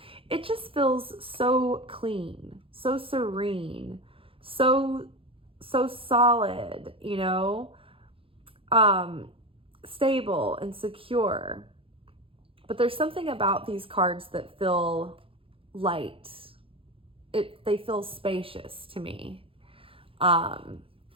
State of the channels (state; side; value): late; left; 0.27 ms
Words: It just feels so clean, so serene, so solid, you know, stable and secure. But there's something about these cards that feel light. They feel spacious to me. And